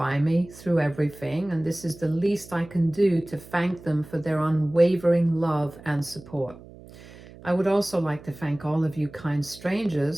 me through everything, and this is the least I can do to thank them for their unwavering love and support. I would also like to thank all of you kind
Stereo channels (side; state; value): right; noise; hum, 19 dB below the sound